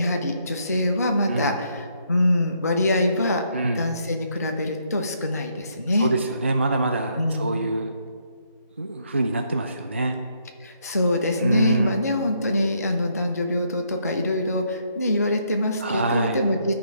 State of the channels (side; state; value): both; inverted; correlation -0.72